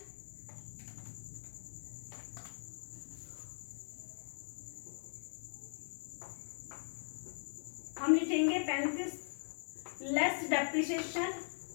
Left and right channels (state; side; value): silent; right; digital silence